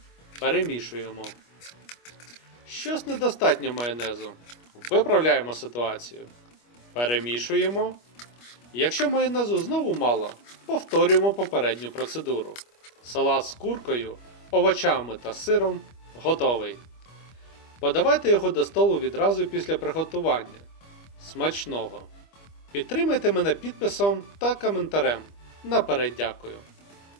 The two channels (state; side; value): late; right; 25 ms